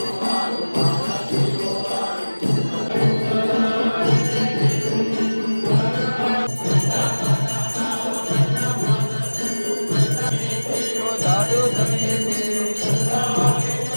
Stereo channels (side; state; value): both; inverted; correlation -1.00